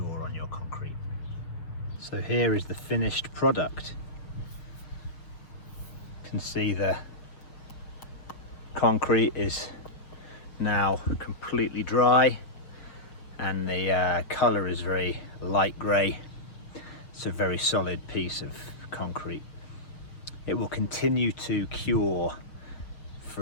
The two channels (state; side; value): late; right; 6.7 ms